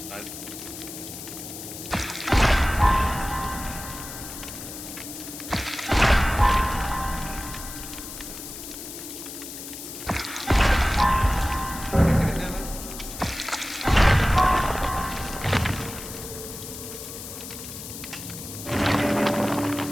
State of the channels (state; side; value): noise; left; hiss, 11 dB below the sound